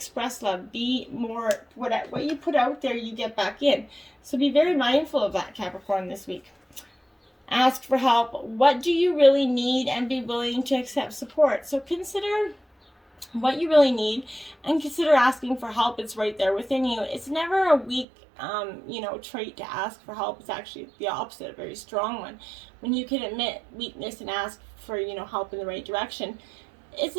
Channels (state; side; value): drops out; left; at 18.1 s